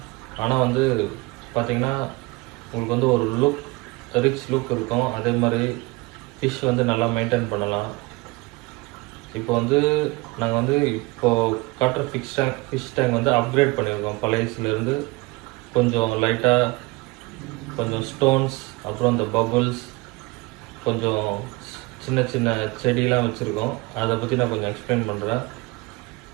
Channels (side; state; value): left; quieter; 24.0 dB